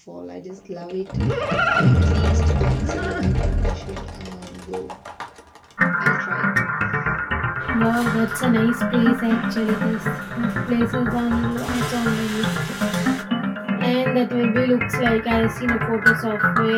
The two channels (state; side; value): identical; both; correlation 1.00